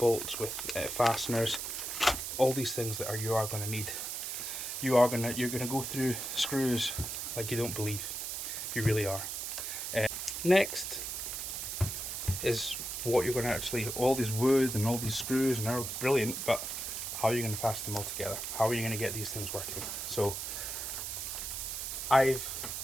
with fasteners, all these things that you are going to need. You're going to go through screws like you don't believe. You really are. Next is what you're going to actually, all these wood and all these screws, and they're brilliant, but how are you going to fasten them all together? How are you going to get these things working? So I've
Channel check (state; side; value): noise; right; hiss, 4 dB below the sound